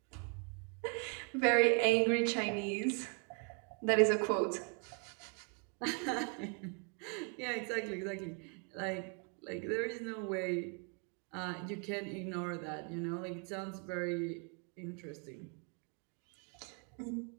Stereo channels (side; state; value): left; quieter; 37.1 dB